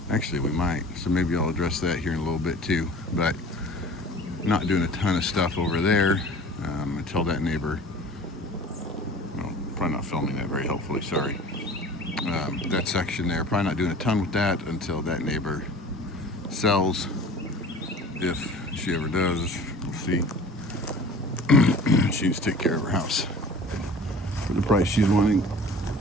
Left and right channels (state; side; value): normal; both; correlation 0.43